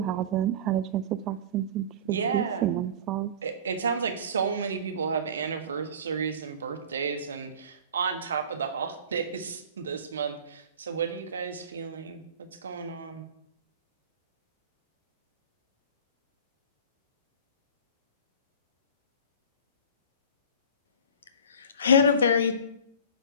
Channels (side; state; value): both; inverted; correlation -0.36